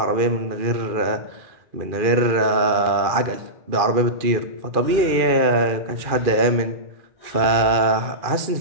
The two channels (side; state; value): left; late; 2.4 ms